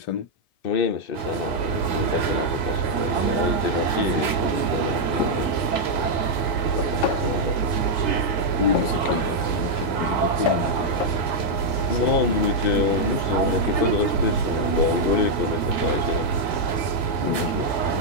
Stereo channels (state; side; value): late; right; 1.8 ms